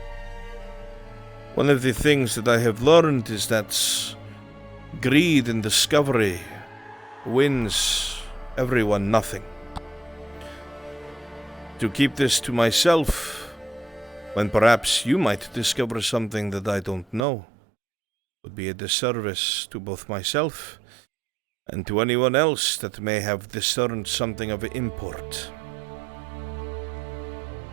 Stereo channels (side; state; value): left; drops out; at 17.2 s